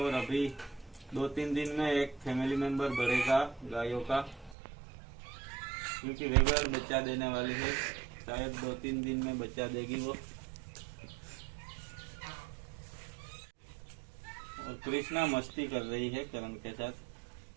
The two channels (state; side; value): drops out; left; at 4.5 s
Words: अभी 2-3 दिन में एक फैमिली मेंबर बढ़ेगा गायों का, क्योंकि रेगुलर बच्चा देने वाली है। शायद 2-3 दिन में बच्चा देगी वो। और कृष्णा मस्ती कर रही है करण के साथ,